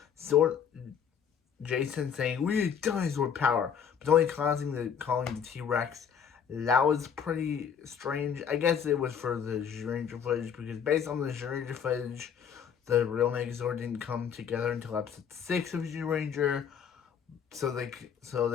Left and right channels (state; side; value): quieter; right; 7.6 dB